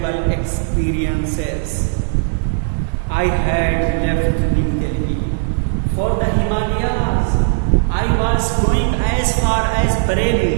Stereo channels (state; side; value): silent; left; digital silence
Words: experiences. I had left New Delhi for the Himalayas. I was going as far as